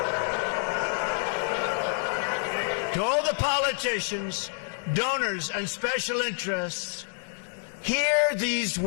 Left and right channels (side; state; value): right; silent; digital silence